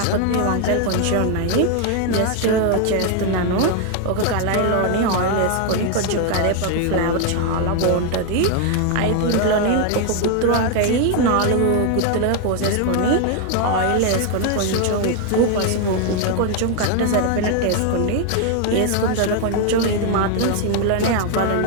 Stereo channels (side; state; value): both; different; correlation 0.00